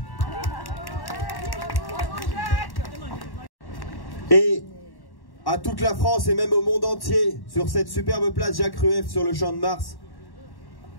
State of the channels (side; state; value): right; late; 1.1 ms